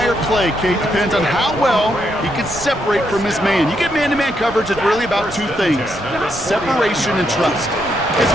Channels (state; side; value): noise; right; rumble, 16 dB below the sound